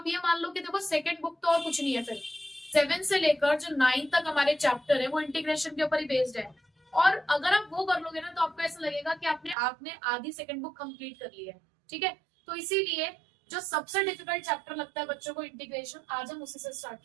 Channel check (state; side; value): drops out; left; at 9.6 s